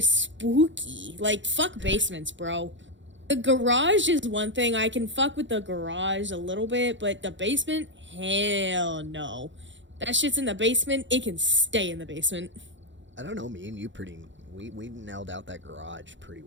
spooky. Like, fuck basements, bro. The garage is one thing. I can fuck with the garage a little bit, but the basement? Hell no. That shit's in the basement. It can stay in the basement. I don't know, me and you we nailed out that garage pretty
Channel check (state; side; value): late; left; 0.54 ms